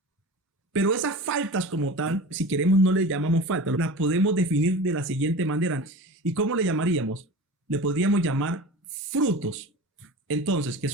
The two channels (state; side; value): normal; both; correlation 0.34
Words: Pero esas faltas como tal, si queremos no le llamamos falta, las podemos definir de la siguiente manera. ¿Y cómo le llamaríamos? Le podríamos llamar frutos. Entonces,